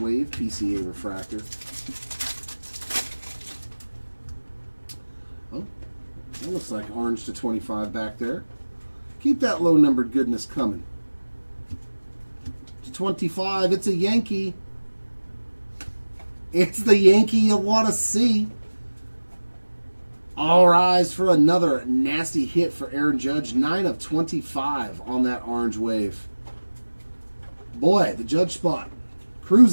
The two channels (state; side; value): inverted; both; correlation -1.00